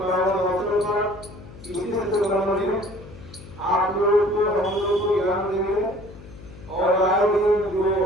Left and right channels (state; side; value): noise; left; hum, 17 dB below the sound